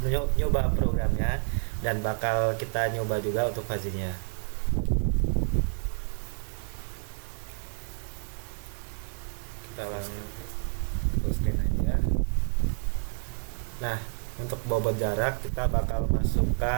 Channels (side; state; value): left; silent; digital silence